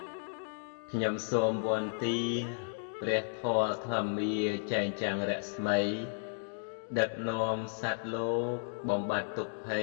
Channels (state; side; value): silent; right; digital silence